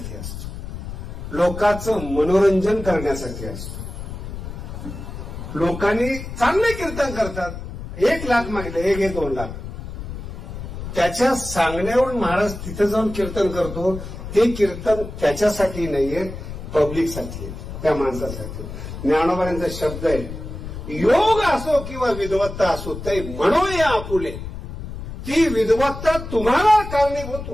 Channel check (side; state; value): left; noise; rumble, 9 dB below the sound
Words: असतो, लोकांचं मनोरंजन करण्यासाठी असतो. लोकांनी चांगले कीर्तन करतात, 1 लाख मागले, 1-2 लाख, त्याच्या सांगण्यावरून महाराज तिथे जाऊन कीर्तन करतो. ते कीर्तन त्याच्यासाठी नाहीये, पब्लिकसाठी, त्या माणसासाठी. ज्ञानोबांचा शब्द आहे, योग असो किंवा विद्वत्ता असो ते म्हणून या आपुले. ती विद्वत्ता तुम्हाला कारणीभूत